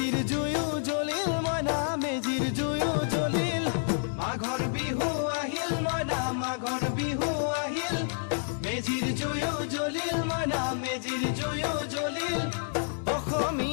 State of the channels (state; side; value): silent; right; 58 dB below the other